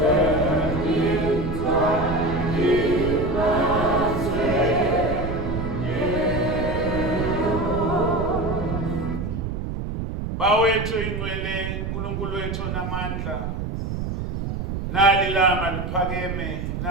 Bawethu ingcwele uNkulunkulu wethu namandla nalilanga liphakeme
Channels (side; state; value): right; noise; rumble, 4 dB below the sound